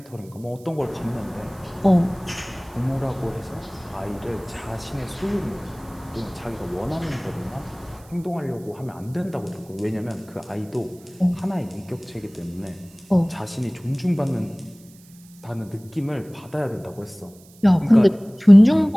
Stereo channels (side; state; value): right; noise; hiss, 26 dB below the sound